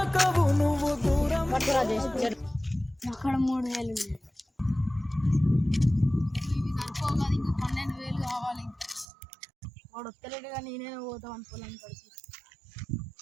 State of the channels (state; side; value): drops out; left; at 9.1 s